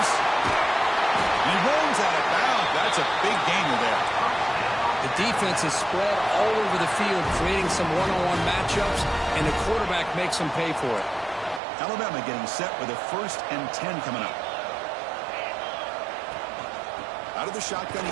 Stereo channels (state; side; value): drops out; left; at 11.6 s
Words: He rolls out of bounds. That's a big gainer there. The defense is spread all over the field, creating some one-on-one matchups, and the quarterback makes them pay for it. Alabama getting set with a 1st and 10 coming up. Out of the shotgun, he